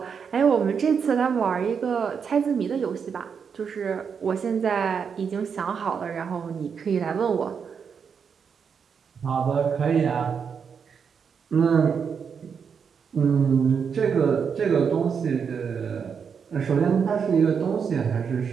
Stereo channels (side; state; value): left; quieter; 6.6 dB